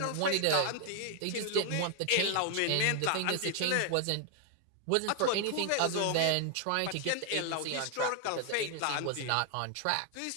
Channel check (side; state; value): both; different; correlation 0.00